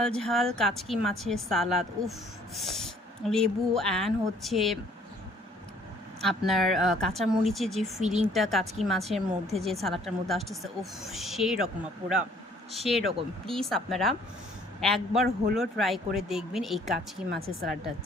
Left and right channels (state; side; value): normal; both; correlation 0.59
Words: ঝাল কাচকি মাছের সালাদ, উফ, লেবু অ্যান্ড হচ্ছে আপনার কাঁচামরিচের যে ফিলিংটা কাচকি মাছের মধ্যে, যে সালাডটার মধ্যে আসতেছে, উফ, সেই রকম আপুরা, সেই রকম। প্লিজ আপনারা একবার হলো ট্রাই করে দেখবেন এই কাচকি মাছের সালাডটা,